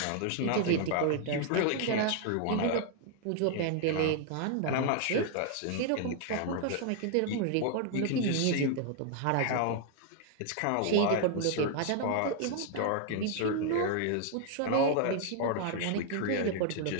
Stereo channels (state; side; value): different; both; correlation 0.00